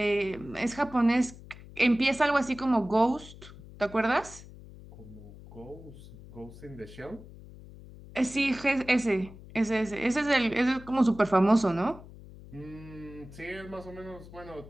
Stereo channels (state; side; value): noise; left; hum, 18 dB below the sound